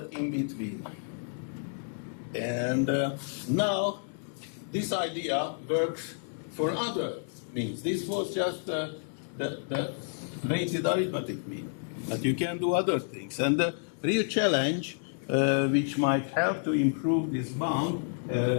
in between. And now this idea works for other means. This was just the weighted arithmetic mean. But you can do other things. And the real challenge, which might help to improve this bound,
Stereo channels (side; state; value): right; silent; digital silence